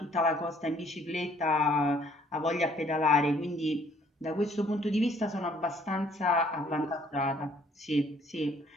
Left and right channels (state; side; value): normal; both; correlation 0.61